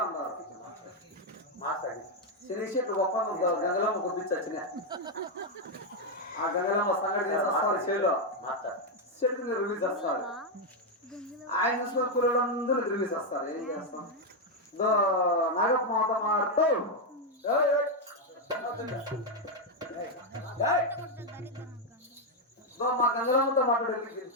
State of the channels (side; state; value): both; normal; correlation 0.02